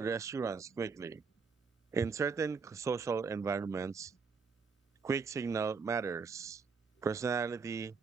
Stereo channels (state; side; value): quieter; left; 5.1 dB